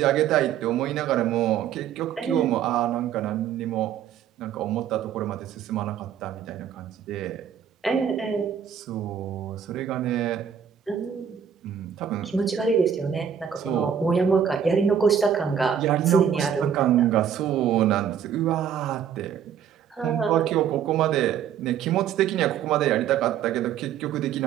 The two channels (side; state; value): left; quieter; 8.5 dB